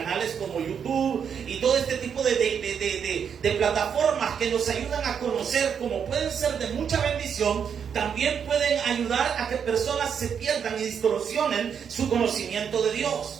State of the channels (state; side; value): quieter; left; 7.4 dB